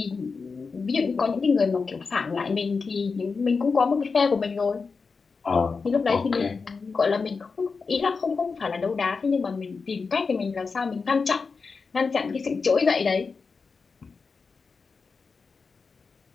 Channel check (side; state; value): right; quieter; 4.8 dB